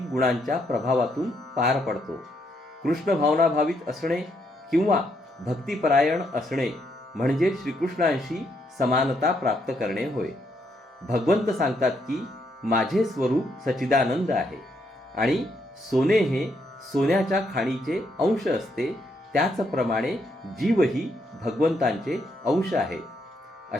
गुणांच्या प्रभावातून पार पडतो. कृष्ण भावनाभावित असणे किंवा भक्तिपरायण असणे म्हणजे श्रीकृष्णांशी समानता प्राप्त करणे होय. भगवंत सांगतात की माझे स्वरूप सच्चिदानंद आहे आणि सोने हे सोन्याच्या खाणीचे अंश असते, त्याचप्रमाणे जीवही भगवंतांचे अंश आहे.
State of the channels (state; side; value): normal; both; correlation 0.76